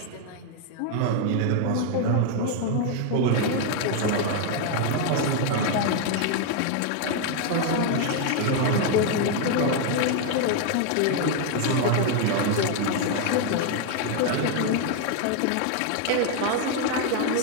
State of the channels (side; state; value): both; different; correlation 0.00